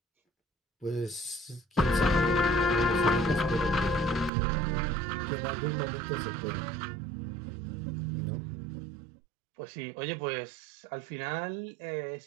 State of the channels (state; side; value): drops out; left; at 4.3 s